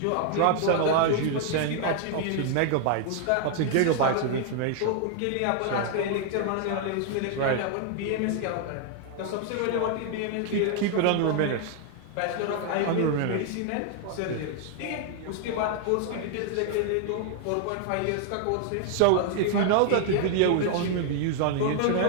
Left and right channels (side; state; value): both; different; correlation 0.00